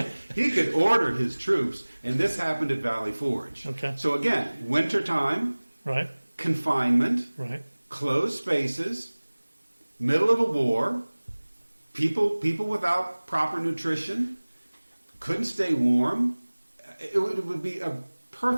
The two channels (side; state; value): both; inverted; correlation -1.00